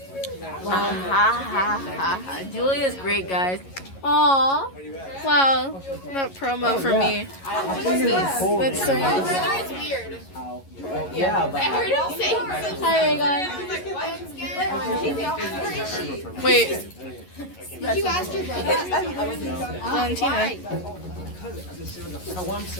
Julia's great, guys. Aww. Wow. That promo for me. That's so nice. It's weird. Yeah, but I heard him say. Hi, Regan. Wait. Did you ask your brother? Valentina.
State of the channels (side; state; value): right; late; 11 ms